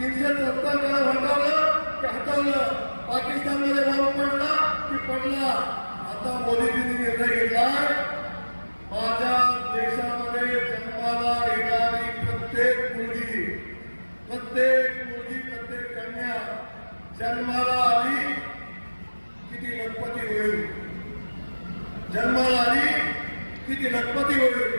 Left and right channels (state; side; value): inverted; both; correlation -1.00